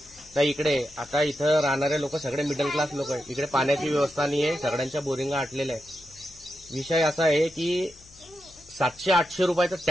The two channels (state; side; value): noise; left; hum, 25 dB below the sound